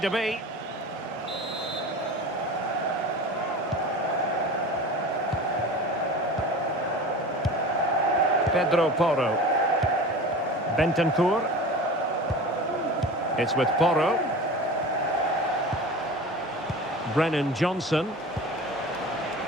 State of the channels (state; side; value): normal; both; correlation 0.35